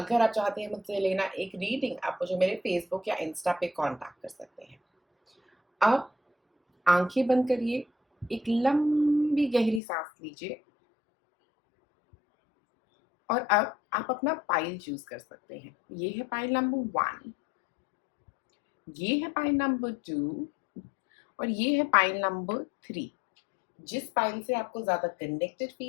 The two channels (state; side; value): drops out; right; at 9.8 s